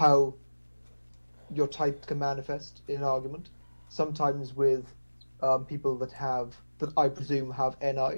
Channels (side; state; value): both; inverted; correlation -1.00